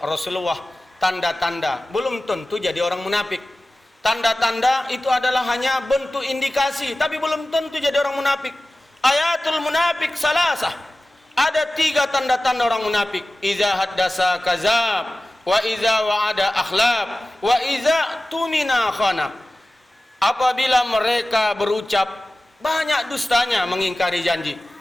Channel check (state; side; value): normal; both; correlation 0.96